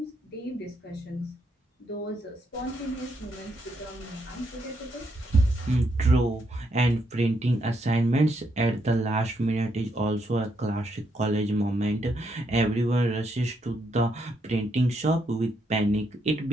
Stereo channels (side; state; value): both; normal; correlation 0.77